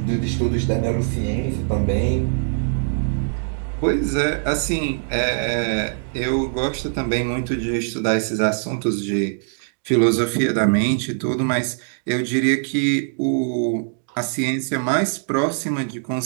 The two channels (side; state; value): left; silent; digital silence